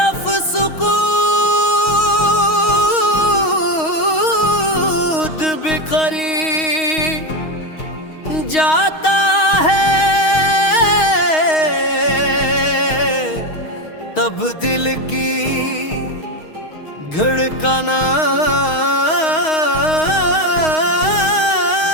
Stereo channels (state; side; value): late; right; 6.4 ms